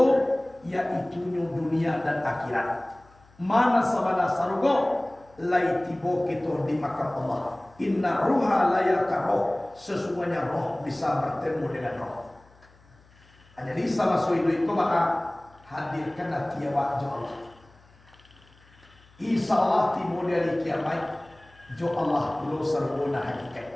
yaitu dunia dan akhirat. Mana sabana sarugu lai tiba kita di makam Allah. Inna ruha layaka roh, sesungguhnya roh bisa bertemu dengan roh. Jadi sama suidu itu maka hadirkan hati awak jo Allah. Insya Allah timur dari kiamat jo Allah pulau sarugona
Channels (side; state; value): left; noise; hum, 28 dB below the sound